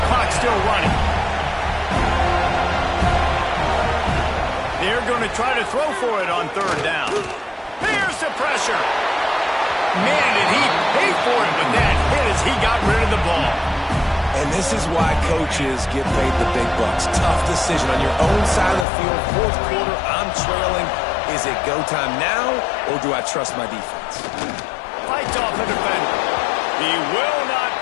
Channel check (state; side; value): drops out; right; at 18.9 s